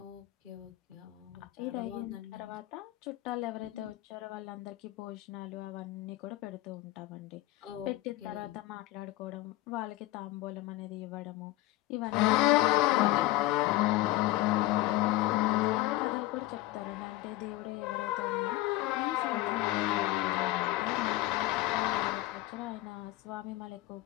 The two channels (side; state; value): right; quieter; 17.0 dB